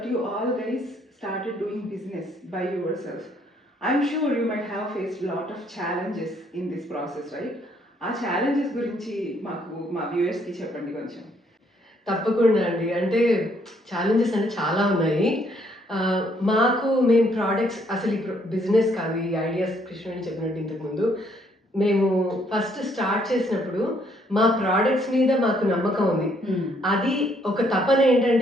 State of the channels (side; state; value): both; normal; correlation 0.68